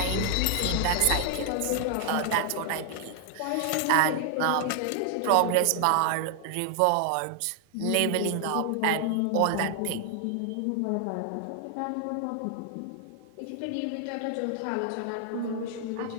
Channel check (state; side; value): different; both; correlation 0.00